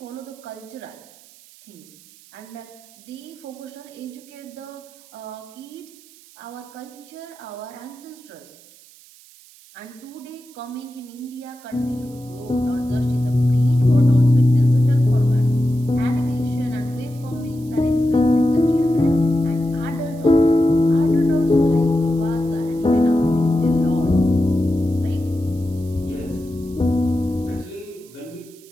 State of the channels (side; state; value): right; noise; hiss, 24 dB below the sound